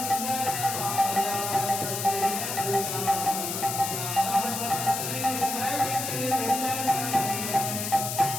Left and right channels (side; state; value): left; noise; hiss, 3 dB below the sound